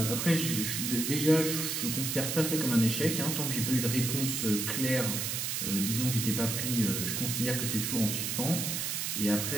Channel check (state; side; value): noise; right; hiss, 1 dB below the sound